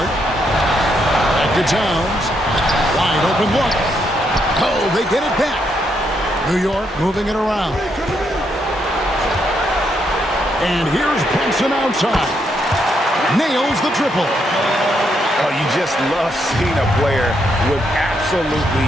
Back to Towns. Wide open look. Oh, they get it back. New York moving it around. And here's Brunson outside. Nails the triple. Oh, you just love seeing a player with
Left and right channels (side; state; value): both; normal; correlation 0.77